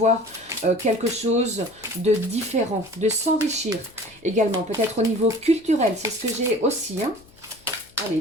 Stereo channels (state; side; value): noise; left; hum, 29 dB below the sound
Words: quelque chose de différent, de s'enrichir également, peut-être au niveau culturel, c'est ce que j'ai aussi, hein. Allez,